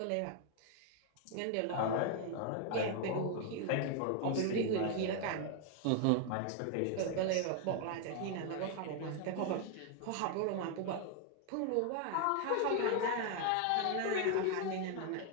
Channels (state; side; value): different; both; correlation 0.01